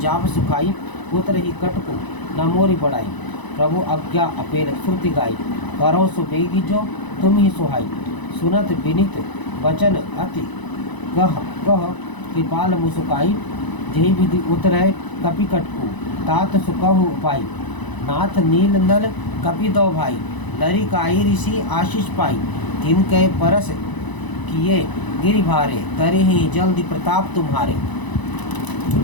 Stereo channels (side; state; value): right; late; 1.0 ms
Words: सुखाई, पुत्र ही कटकु न मोरी बढ़ाई। प्रभु आज्ञा अपेल श्रुति गाई, करो सो बेगी जो तुम ही सुहाई। सुनत विनित वचन अति कह कह, कृपाल मुसुकाई। जही विधि उतरै कपि कटकु, तात सुकहु उपाई। नाथ नील नल कपि दो भाई, लरी काई ऋषि आशीष पाई। तिन के परस किए गिरि भारे, तरे ही जल्दी प्रताप तुम्हारे।